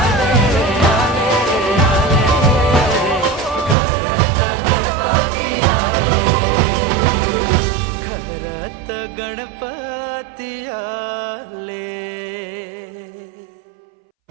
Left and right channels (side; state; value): left; drops out; at 3.8 s